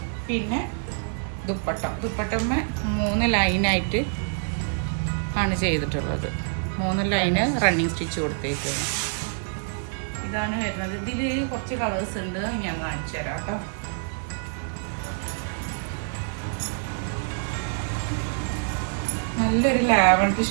പിന്നെ ദുപ്പട്ടമ്മ 3 ലൈനായിട്ട് ആണ് ചെയ്തിട്ടുള്ളത്. 3 ലൈന് റണ്ണിങ് സ്റ്റിച്ച് കൊടുത്തേക്കാണ്. ഇതാണ് വരുന്നത്. ഇതിൽ കുറച്ച് കളേഴ്സ് ഉണ്ട്, ഞാൻ കാണിച്ചു തരാം കേട്ടോ. നല്ലൊരു ലാവൻഡർ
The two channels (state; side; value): silent; left; 61 dB below the other